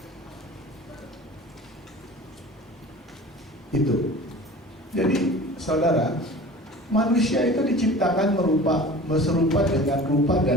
Itu. Jadi saudara, manusia itu diciptakan serupa dengan rupa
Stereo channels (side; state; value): both; normal; correlation 0.40